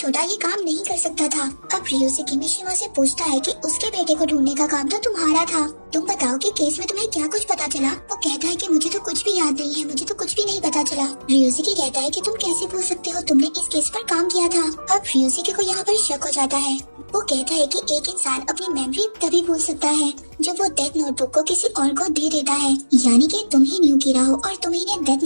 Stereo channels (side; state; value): both; inverted; correlation -1.00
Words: ये काम नहीं कर सकता था। अब ryusuke मिशिमा से पूछता है कि उसके बेटे को ढूंढने का काम तो तुम्हारा था, तुम बताओ कि केस में तुम्हें क्या कुछ पता चला। वो कहता है कि मुझे तो कुछ भी याद नहीं है, मुझे तो कुछ भी नहीं पता चला। ryusuke कहता है कि तुम कैसे भूल सकते हो, तुमने इस केस पर काम किया था। अब ryusuke को यहाँ पर शक हो जाता है। वो कहता है कि एक इंसान अपनी मेमोरी तभी भूल सकता है जब वो डेथ नोटबुक को किसी और को दे देता है, यानी कि तुम ही न्यू कीरा हो और तुम्ही ने